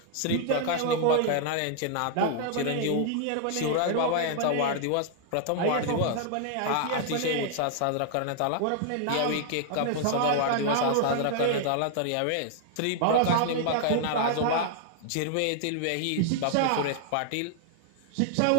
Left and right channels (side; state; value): both; different; correlation 0.00